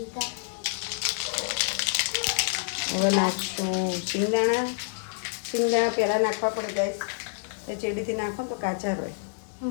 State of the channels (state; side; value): silent; right; digital silence